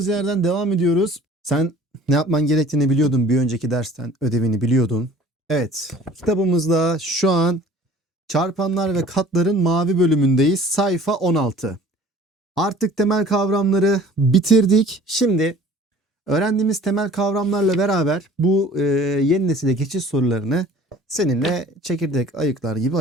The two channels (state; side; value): normal; both; correlation 0.48